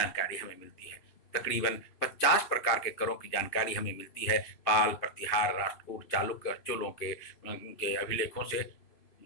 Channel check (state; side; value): late; right; 2.8 ms